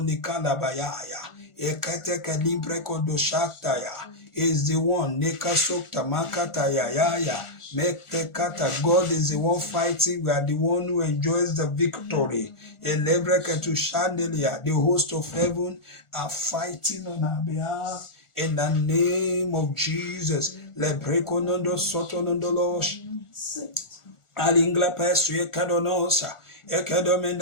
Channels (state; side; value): late; right; 1.4 ms